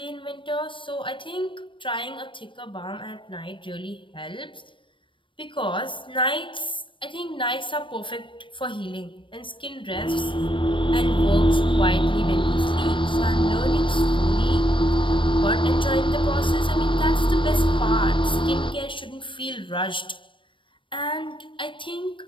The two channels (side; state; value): right; late; 0.25 ms